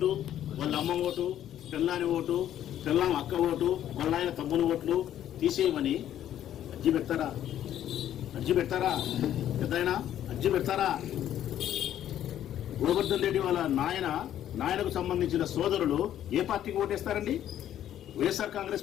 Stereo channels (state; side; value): quieter; right; 11.3 dB